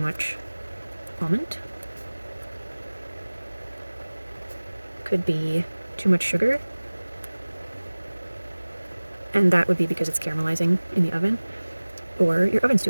almond. Could be too much sugar, and that would be because it's caramelizing in the oven, or your oven's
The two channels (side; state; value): both; inverted; correlation -1.00